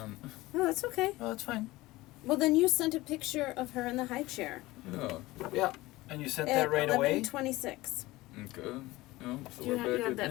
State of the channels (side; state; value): right; quieter; 19.2 dB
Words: oh, that's okay. Oh, that's fine. Well, then you sent a picture of her in the high chair. Yeah. Yeah. And you sent At that right away? 11:26. Okay. Yeah. So Do you we're have- back you have at